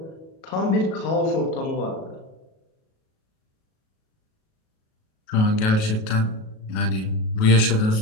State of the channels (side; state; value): right; late; 37 ms